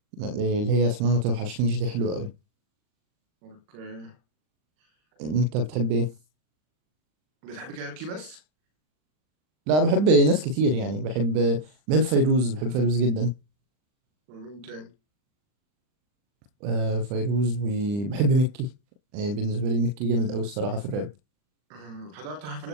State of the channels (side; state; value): left; late; 39 ms